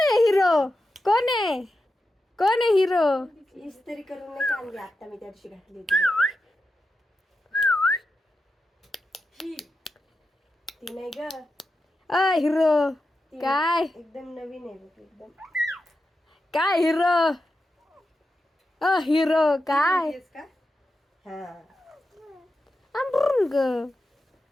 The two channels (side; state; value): both; normal; correlation 0.90